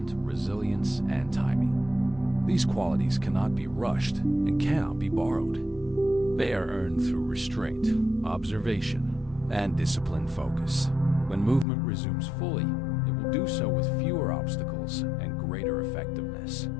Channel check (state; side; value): drops out; right; at 11.7 s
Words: resilience, and timing. These qualities cannot be rushed and cannot be borrowed. They are earned through restraint, observation, and disciplined focus. When movement resumes fully, it will do so with fewer obstacles and greater effectiveness.